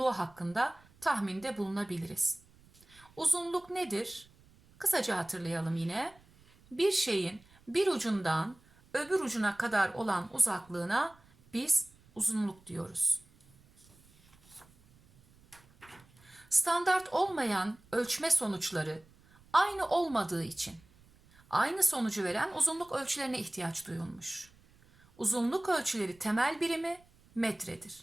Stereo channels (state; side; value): noise; right; rumble, 28 dB below the sound